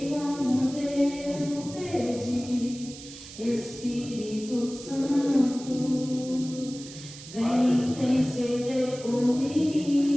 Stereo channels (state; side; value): noise; right; hiss, 15 dB below the sound